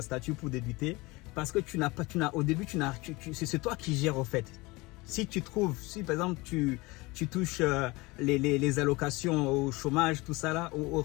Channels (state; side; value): quieter; right; 23.3 dB